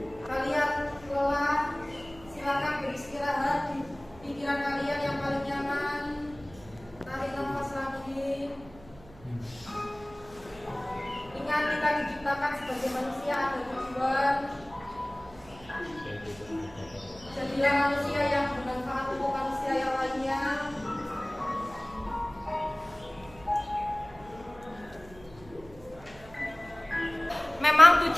Kalian lelah, silakan beristirahat di pikiran kalian yang paling nyaman. Tarik nafas lagi. Ingat, kita diciptakan sebagai manusia ada tujuan. Jadilah manusia yang bermanfaat untuk manusia yang lainnya. Memang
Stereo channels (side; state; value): right; noise; hum, 21 dB below the sound